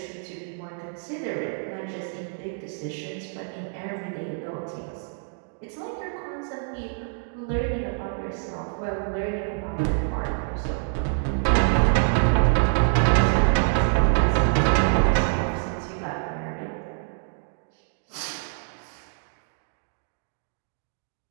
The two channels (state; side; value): silent; left; 61 dB below the other